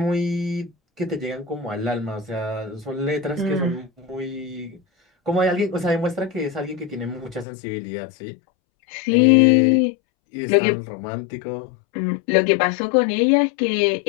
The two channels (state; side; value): drops out; right; at 7.5 s